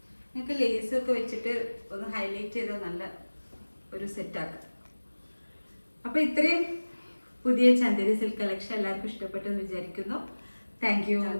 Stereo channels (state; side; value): inverted; both; correlation -1.00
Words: നിങ്ങൾക്ക് ലേസൊക്കെ വെച്ചിട്ട് ഒന്ന് ഹൈലൈറ്റ് ചെയ്താൽ നല്ല ഒരു സെറ്റാക്കാം. അപ്പൊ ഇത്രയും പുതിയ ചന്ദേരി സിൽക്ക് കളക്ഷൻ എല്ലാവർക്കും ഇഷ്ടപ്പെട്ടെന്ന് വിചാരിക്കുന്നു. Thank you.